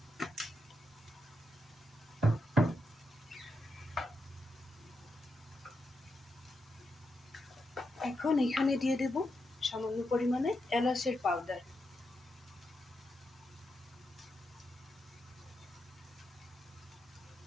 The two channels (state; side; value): normal; both; correlation 0.85